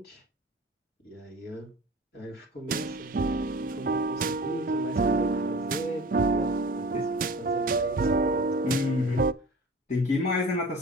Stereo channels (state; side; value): normal; both; correlation 0.39